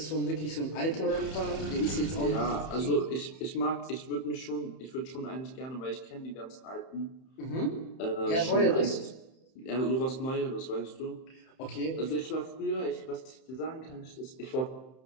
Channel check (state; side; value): late; right; 31 ms